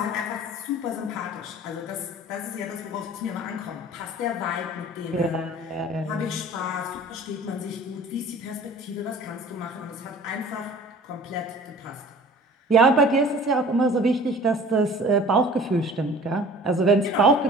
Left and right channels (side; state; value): both; normal; correlation 0.46